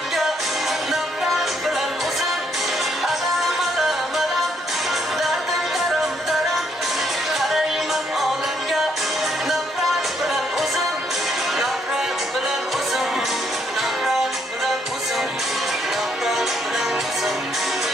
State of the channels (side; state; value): both; normal; correlation 0.71